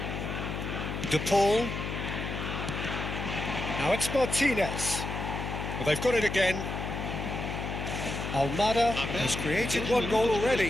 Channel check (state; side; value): noise; left; hum, 4 dB below the sound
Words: De Paul. Now it's Martinez. Well, they've got it again. Almada has created one goal